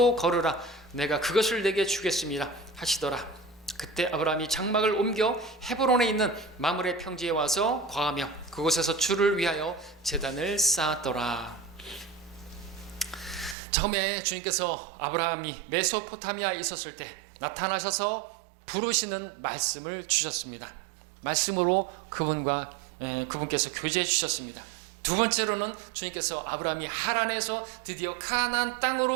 걸으라. 내가 그것을 내게 주겠습니다 하시더라. 그때 아브라함이 장막을 옮겨 헤브론에 있는 마므레 평지에 와서 거하며 그곳에서 주를 위하여 제단을 쌓았더라. 처음에 주님께서 아브라함이 메소포타미아에 있었을 때 나타나셔서 부르시는 말씀을 주셨습니다. 말씀으로 그분께서 교제해 주셨습니다. 두 번째로는 주님께서 아브라함이 하란에서 드디어 가나안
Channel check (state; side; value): drops out; left; at 13.6 s